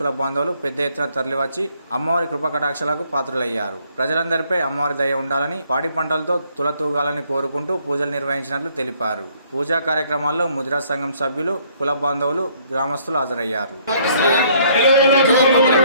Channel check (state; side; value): inverted; both; correlation -0.64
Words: బాంధవులు పెద్ద ఎత్తున తరలివచ్చి అమ్మవారి కృపకటాక్షలకు పాత్రులయ్యారు. ప్రజలందరిపై అమ్మవారి దయ ఉండాలని, పాడి పంటలతో తులతూగాలని కోరుకుంటూ పూజలు నిర్వహించినట్లు తెలిపారు. పూజా కార్యక్రమాల్లో ముదిరాజ్ సంఘం సభ్యులు, కుల బాంధవులు, గ్రామస్తులు హాజరయ్యారు.